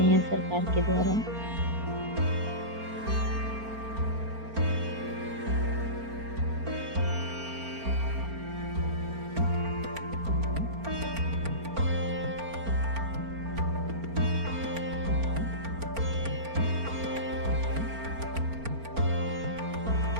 हैं सरकार के द्वारा।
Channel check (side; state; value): left; late; 4.4 ms